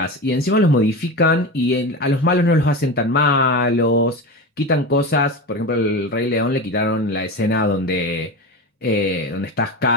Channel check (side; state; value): both; normal; correlation 0.24